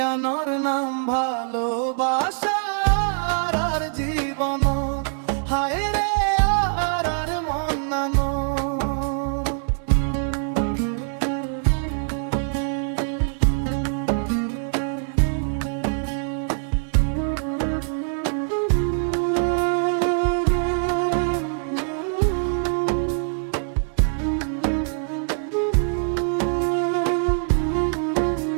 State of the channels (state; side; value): silent; left; digital silence